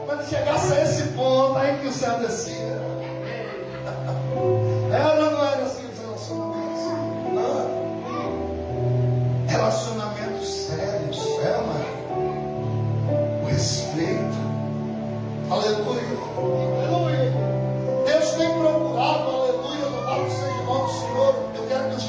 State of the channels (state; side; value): identical; both; correlation 1.00